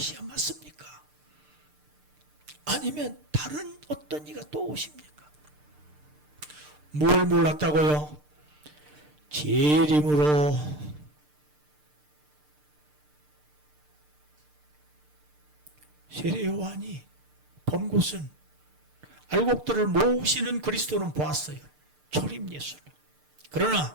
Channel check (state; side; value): late; left; 6.7 ms